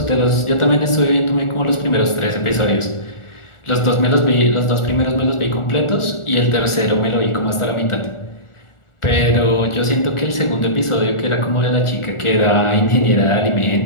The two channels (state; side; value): late; right; 1.4 ms